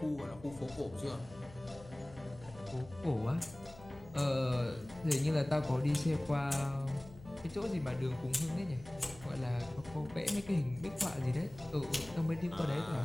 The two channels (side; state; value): left; noise; hum, 19 dB below the sound